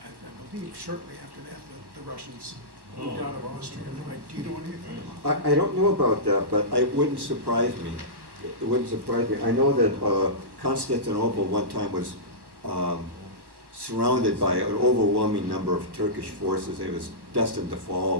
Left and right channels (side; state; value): left; late; 1.1 ms